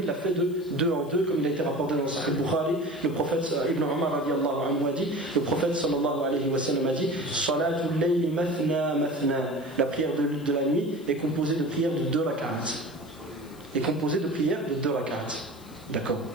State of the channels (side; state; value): left; noise; hiss, 25 dB below the sound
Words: il l'a fait de 2 en 2, comme il a été rapporté dans le Sahih Bukhari. Le prophète Ibn Umar radiyallahu anhu a dit, le prophète sallallahu alayhi wa sallam a dit, Salatul layli mathna mathna. La prière de la nuit est composée de prières de 2 rak'at. D'accord.